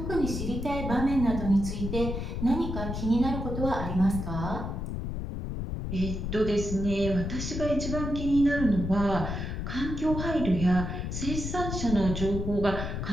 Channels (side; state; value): left; noise; rumble, 4 dB below the sound